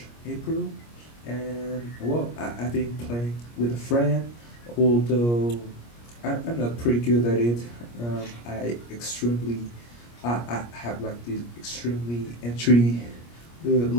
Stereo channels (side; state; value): right; late; 25 ms